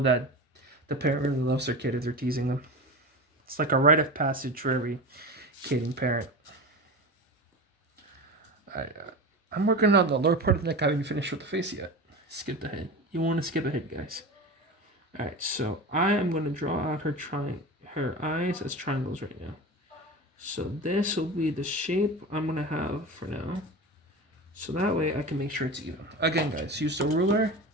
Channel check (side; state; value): both; normal; correlation 0.28